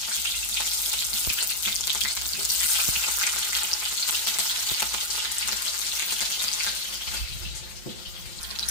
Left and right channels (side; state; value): right; late; 5.7 ms